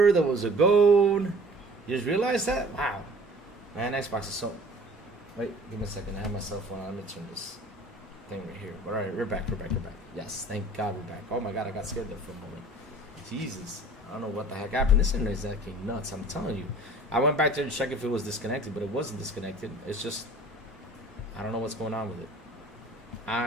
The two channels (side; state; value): both; normal; correlation 0.48